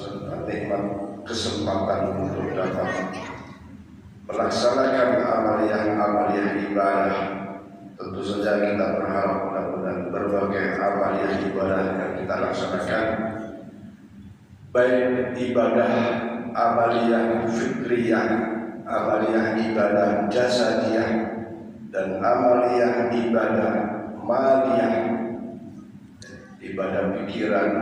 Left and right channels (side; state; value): both; identical; correlation 1.00